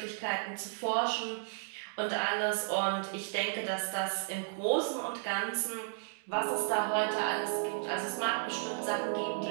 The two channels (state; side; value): silent; left; digital silence